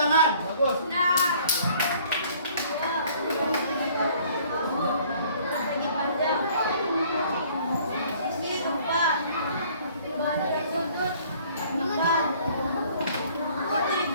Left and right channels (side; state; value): both; inverted; correlation -0.57